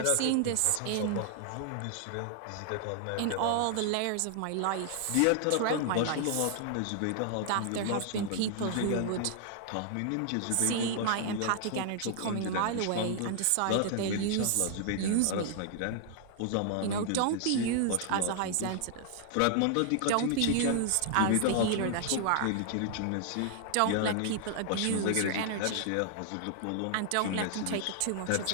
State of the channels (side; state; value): both; different; correlation 0.00